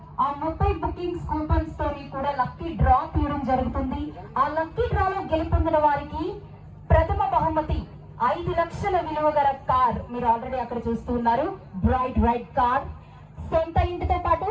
ఆ 30 బుకింగ్స్ కూపన్స్ తోని కూడా లక్కీ డ్రా తీయడం జరుగుతుంది. ఆ లక్కీ డ్రాలో గెలుపొందిన వారికి ప్రథమ బహుమతి 5 లక్షల విలువ గల కార్. మీరు ఆల్రెడీ అక్కడ చూస్తున్నారు, బ్రైట్ వైట్ కార్. సొంత ఇంటితో పాటు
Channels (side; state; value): both; identical; correlation 1.00